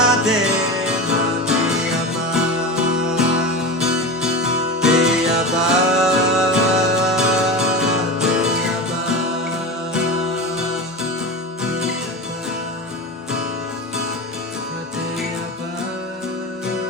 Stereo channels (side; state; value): both; normal; correlation 0.25